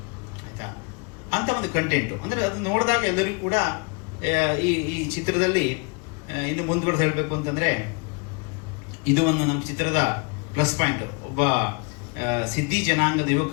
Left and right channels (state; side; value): quieter; right; 32.5 dB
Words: ಆಯ್ತಾ? ಅಂತ ಒಂದು ಕಂಟೆಂಟು ಅಂದ್ರೆ ಅದು ನೋಡಿದಾಗ ಎಲ್ಲರಿಗೂ ಕೂಡ ಈ ಚಿತ್ರದಲ್ಲಿ ಇನ್ನು ಮುಂದುವರೆದು ಹೇಳಬೇಕು ಅಂತಂದ್ರೆ, ಇದು ಒಂದು ನಮ್ಮ ಚಿತ್ರದ ಪ್ಲಸ್ ಪಾಯಿಂಟ್. ಒಬ್ಬ ಸಿದ್ಧಿ ಜನಾಂಗದ ಯುವಕ